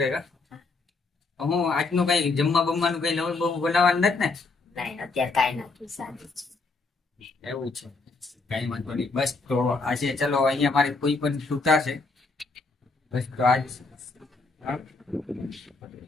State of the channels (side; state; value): right; quieter; 3.8 dB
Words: કા? હું આજનું કઈ જમવા બમવાનું કઈ નવું બહુ બનાવવાનું નથી ને? નહીં, અત્યારે કાંઈ નથી, સારું છે. એવું છે, કઈ વાંધો નહીં. બસ તો આજે ચલો અહીંયા મારી કોઈ પણ છૂટા છે. બસ તો આજ